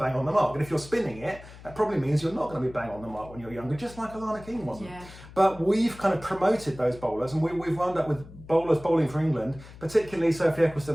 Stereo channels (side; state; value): left; noise; hum, 18 dB below the sound